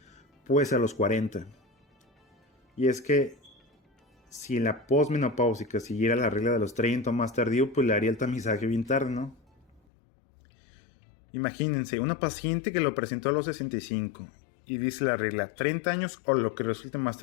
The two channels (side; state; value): right; drops out; at 9.8 s